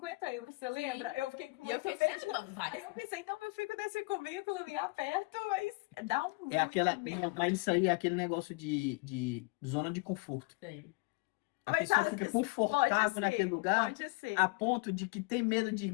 euros, você lembra? Eu fiquei com E eu muito fiquei medo. assim, mano, Aí vai. eu pensei, então eu fico nesse cubículo e aperto, mas dá um É aquela, medo. mas isso aí é aquele negócio de zona de conforto. Sim. A Mas pessoa fica confortável naquele lugar pode ser. a ponto de que tem medo de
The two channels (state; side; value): quieter; right; 26.1 dB